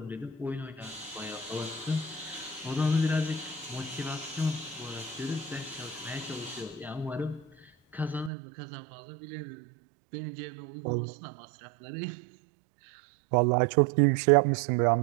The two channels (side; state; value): left; drops out; at 8.3 s